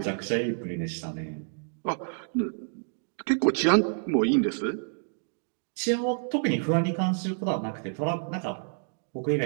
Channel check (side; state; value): left; silent; 59 dB below the other